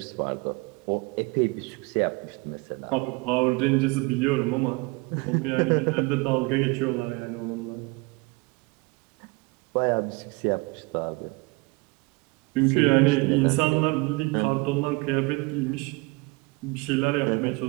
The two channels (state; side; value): quieter; left; 25.9 dB